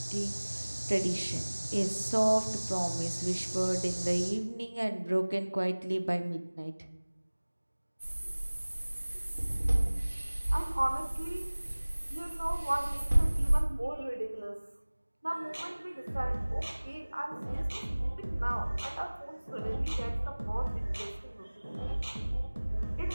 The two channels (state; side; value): inverted; both; correlation -1.00